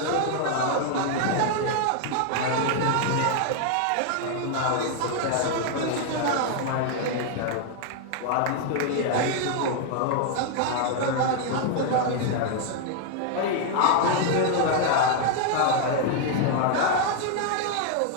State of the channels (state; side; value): different; both; correlation 0.00